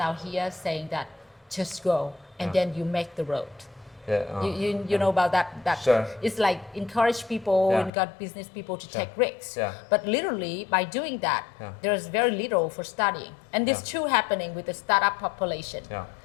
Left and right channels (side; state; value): right; drops out; at 7.9 s